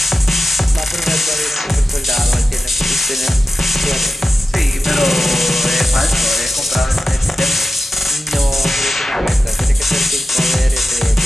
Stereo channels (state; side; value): normal; both; correlation 0.94